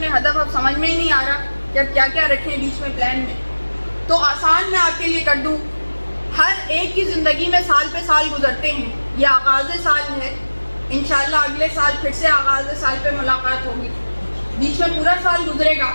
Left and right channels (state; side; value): inverted; both; correlation -1.00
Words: ہدف, اب سمجھ میں ہی نہیں آ رہا کہ اب کیا کیا رکھیں بیچ میں پلان میں. تو آسان میں آپ کے لیے کر دوں. ہر ایک کی زندگی میں سال پہ سال گزرتے ہیں. یہ آغاز سال ہے, انشاءاللہ اگلے سال پھر سے آغاز سال پہ ملاقات ہوگی. بیچ میں پورا سال گزرے گا.